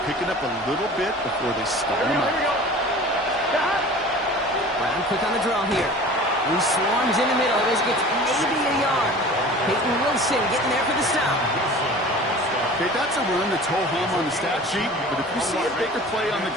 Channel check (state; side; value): normal; both; correlation 0.41